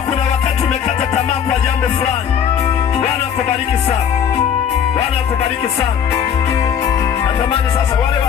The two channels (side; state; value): right; quieter; 8.2 dB